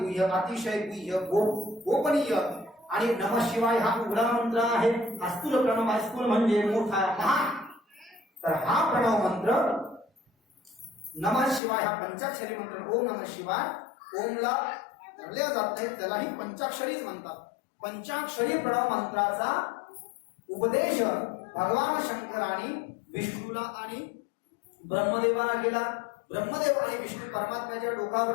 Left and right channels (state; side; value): drops out; right; at 11.6 s